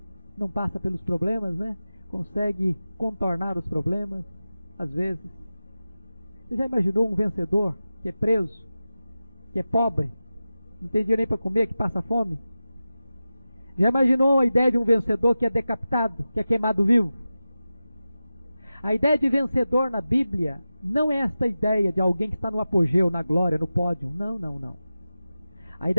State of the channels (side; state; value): both; inverted; correlation -0.94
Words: não passa pelos problemas, né? Consegue contornar os problemas, às vezes. Você já imaginou um vencedor que é preso, que é pobre, não tem dinheiro nem para comer, que passa fome? Já imaginou a ideia de um vencedor que é decapitado, que é queimado vivo? A ideia de vencedor na Bíblia não é esta ideia de alguém que está no apogeu, na glória, no pódio. Não, não, não. A